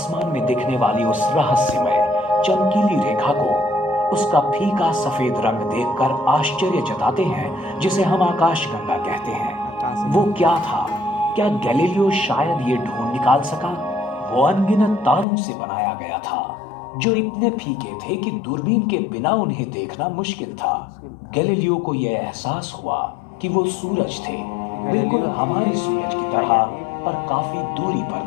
में दिखने वाली उस रहस्यमय चमकीली रेखा को उसका फीका सफेद रंग देखकर आश्चर्य जताते हैं, जिसे हम आकाशगंगा कहते हैं। वो क्या था? क्या गैलीलियो शायद ये ढूंढ निकाल सका? वो अनगिनत तारों से बनाया गया था जो इतने फीके थे कि दूरबीन के बिना उन्हें देखना मुश्किल था। गैलीलियो को यह एहसास हुआ कि वो सूरज थे, बिल्कुल हमारे सूरज की तरह, पर काफी दूरी पर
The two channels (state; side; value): drops out; right; at 15.2 s